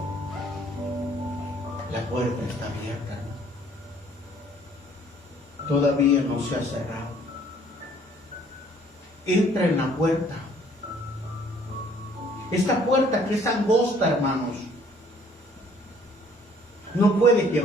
La puerta está abierta. Todavía no se ha cerrado. Entra en la puerta. Esta puerta que es angosta, hermanos, no puede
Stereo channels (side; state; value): both; normal; correlation 0.59